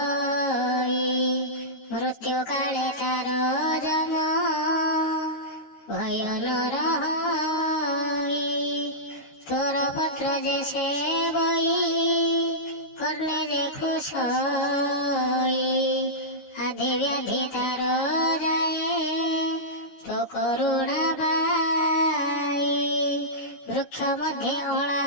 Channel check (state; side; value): late; right; 13 ms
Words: मृत्यु काले तार जम भय न रही। तोर पत्र जे सेवई करने जे खुशई, आदि व्याधि तार जाए तो करुणा बाई। वृक्ष मध्ये अला